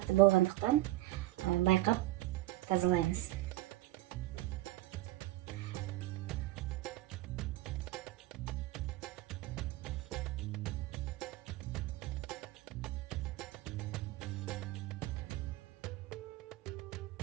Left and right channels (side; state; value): left; quieter; 17.6 dB